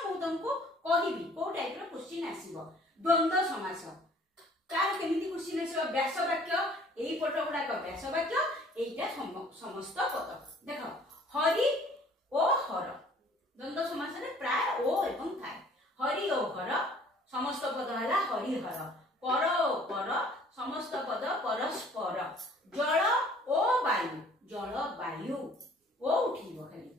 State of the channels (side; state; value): both; normal; correlation 0.55